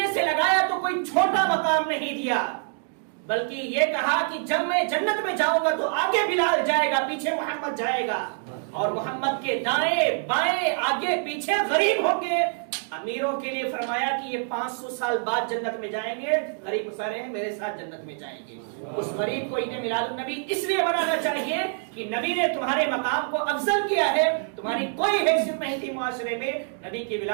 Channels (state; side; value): silent; left; 61 dB below the other